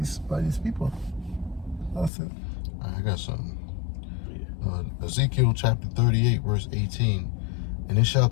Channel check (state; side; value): drops out; right; at 2.1 s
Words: these people. That's it. I got something. Ezekiel chapter 38, verse 18. And it shall